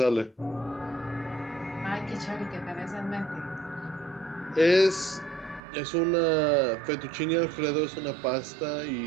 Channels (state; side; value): drops out; left; at 5.6 s